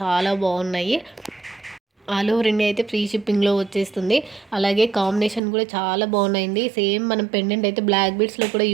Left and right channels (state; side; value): drops out; left; at 5.4 s